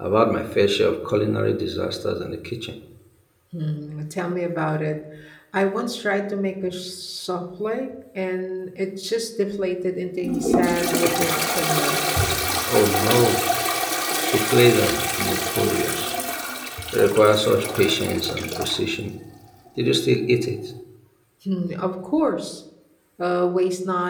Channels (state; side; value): identical; both; correlation 1.00